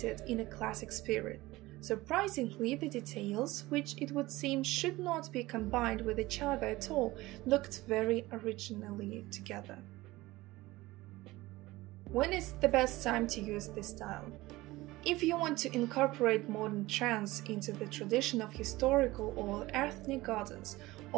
in a classic spirit. Surprisingly, the details, which it would seem should not be combined with each other at all, looked very originally together. When is the best time to use this style? If you want to incorporate modern trends into the tradition of historical or ethnic gardens,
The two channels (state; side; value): quieter; left; 19.2 dB